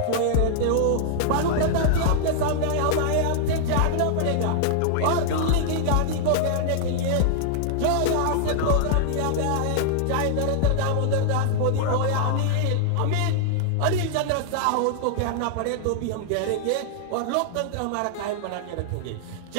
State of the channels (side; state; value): both; different; correlation -0.01